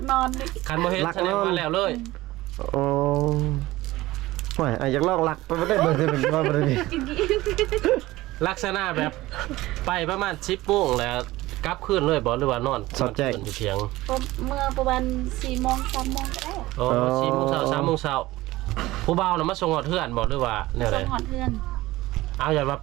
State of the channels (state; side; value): quieter; left; 18.0 dB